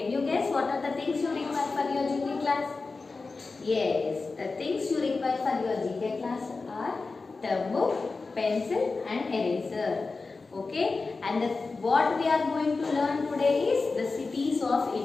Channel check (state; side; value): quieter; right; 4.0 dB